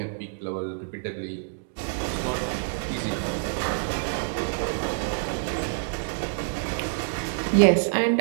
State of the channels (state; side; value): silent; left; digital silence